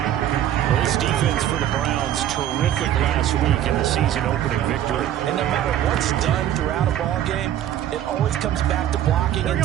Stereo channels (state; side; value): quieter; left; 11.5 dB